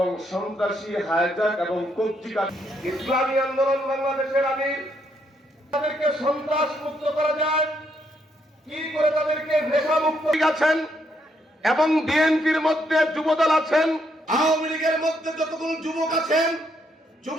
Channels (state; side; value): normal; both; correlation 0.75